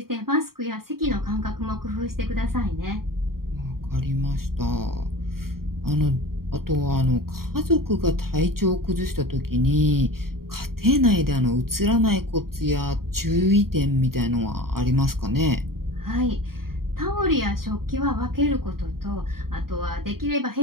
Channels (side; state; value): left; late; 0.93 ms